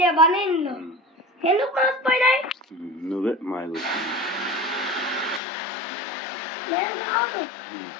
బనీన్లు. ఎందుకు మాసిపోయినాయి? నువ్వే మాయగు. నేను రాదు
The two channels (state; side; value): drops out; right; at 5.4 s